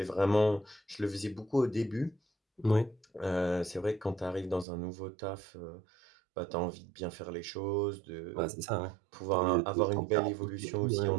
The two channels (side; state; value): left; drops out; at 4.7 s